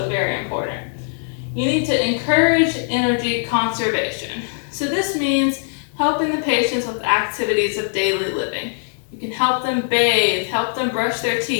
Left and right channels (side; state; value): right; silent; 65 dB below the other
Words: very important. You need to encourage energy conservation. So this means helping the patients with activities of daily living. You can help them bathe, help them brush their